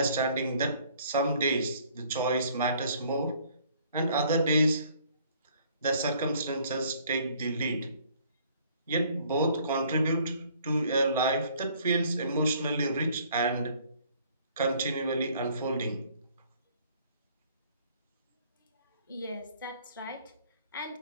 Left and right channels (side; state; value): both; inverted; correlation -0.59